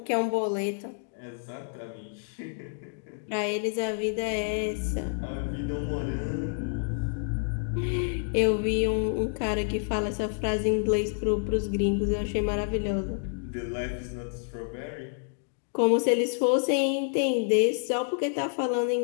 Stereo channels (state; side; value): silent; right; digital silence